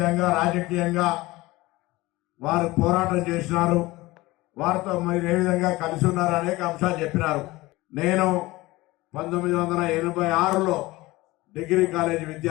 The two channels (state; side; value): quieter; right; 20.0 dB